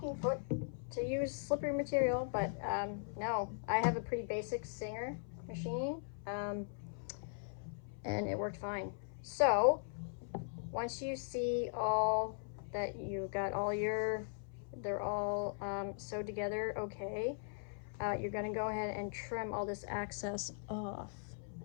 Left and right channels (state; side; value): silent; right; 51 dB below the other